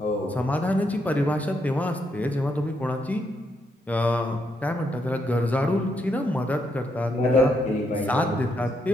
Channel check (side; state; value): both; normal; correlation 0.77